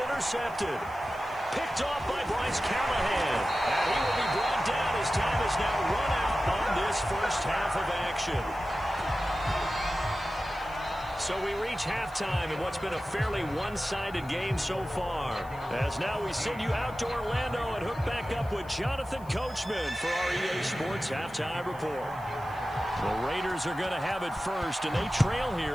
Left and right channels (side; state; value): left; noise; hiss, 25 dB below the sound